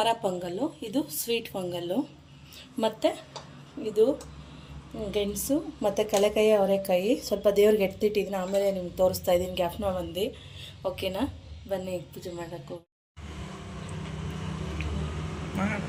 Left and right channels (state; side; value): identical; both; correlation 1.00